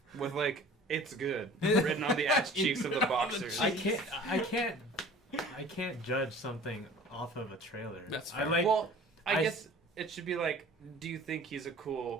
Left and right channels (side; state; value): both; normal; correlation 0.45